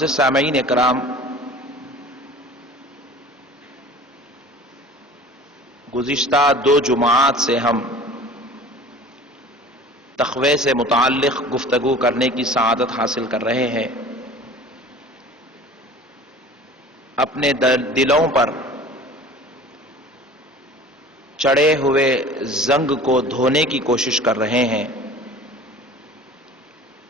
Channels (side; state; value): both; normal; correlation 0.42